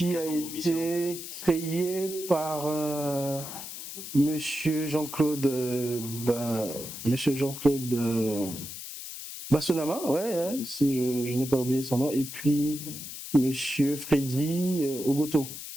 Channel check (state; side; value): noise; left; hiss, 10 dB below the sound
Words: a été créée par Monsieur Jean-Claude Bassonama, ouais, hein, si je n'ai pas oublié son nom, et puis Monsieur Freddy Ogoto.